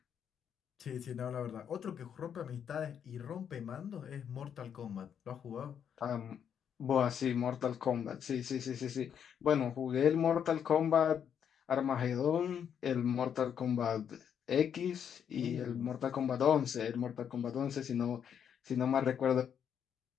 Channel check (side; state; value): right; quieter; 8.3 dB